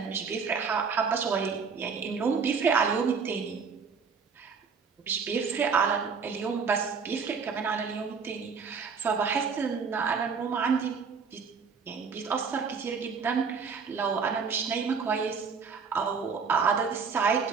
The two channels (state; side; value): quieter; left; 5.6 dB